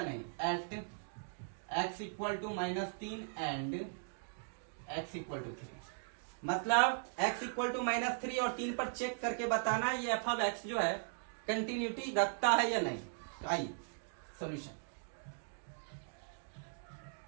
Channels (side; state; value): left; silent; digital silence